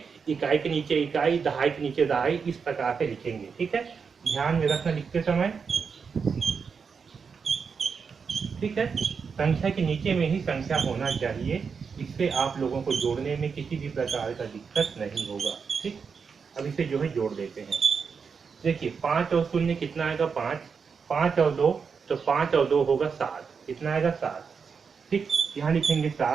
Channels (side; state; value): left; quieter; 5.8 dB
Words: इकाई के नीचे इकाई, दहाई के नीचे दहाई, इस प्रकार से लिखेंगे, ठीक है। ध्यान में रखना लिखते समय, ठीक है। संख्या के नीचे में ही संख्या होना चाहिए, इससे आप लोगों को जोड़ने में किसी भी प्रकार का दिक्कत नहीं होगा, ठीक। अब इसे जो है जोड़ देते हैं। देखिए 5 और 0 कितना आएगा 5, 5 और 2 तो 5 और 2 होगा 7, कितना आएगा 7, ठीक। यहाँ लिखेंगे